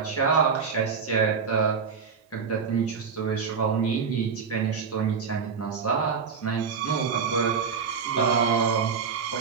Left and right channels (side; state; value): left; quieter; 5.9 dB